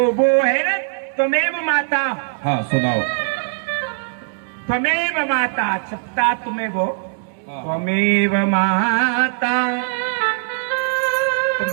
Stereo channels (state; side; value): silent; left; digital silence